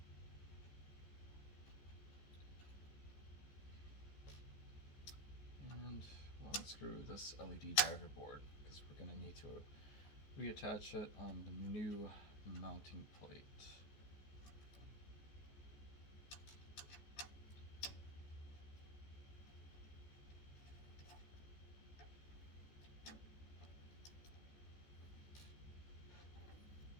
And we'll unscrew this LED driver board, because we're going to need to reattach it on the new mounting plate.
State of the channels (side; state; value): right; late; 14 ms